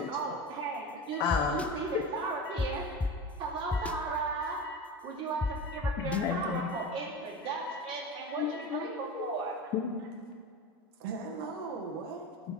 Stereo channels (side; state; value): both; normal; correlation 0.28